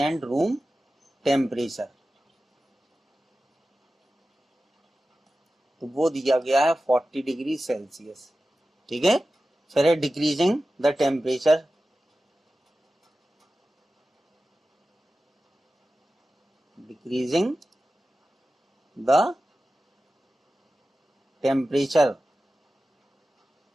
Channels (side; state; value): both; normal; correlation 0.94